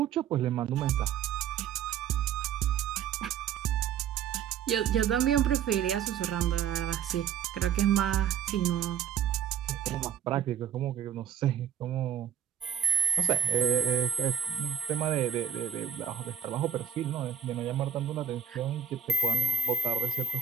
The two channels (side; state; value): left; quieter; 8.5 dB